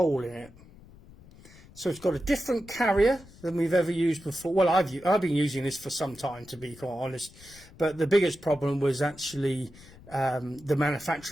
in it. So it's got a different carrier than we've ever used before. Well, I've been using this for some time, to be quite honest. But the biggest problem was actually the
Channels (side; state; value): left; noise; rumble, 22 dB below the sound